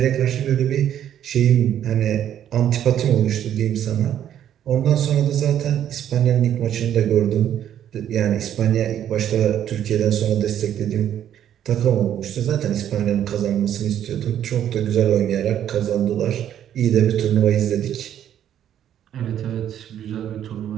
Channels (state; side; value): quieter; left; 10.4 dB